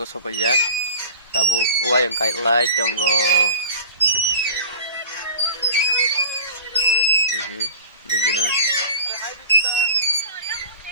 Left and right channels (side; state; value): both; inverted; correlation -0.39